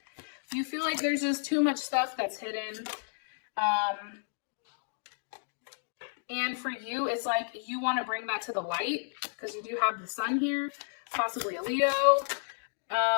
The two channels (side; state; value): right; silent; digital silence